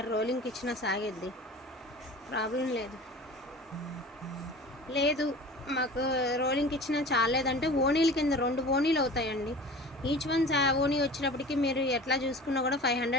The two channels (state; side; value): normal; both; correlation 0.39